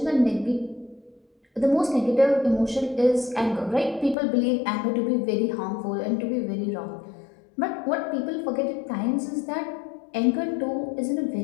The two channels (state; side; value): drops out; right; at 4.2 s